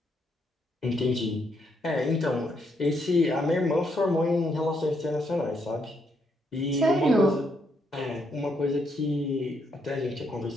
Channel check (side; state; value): both; normal; correlation 0.76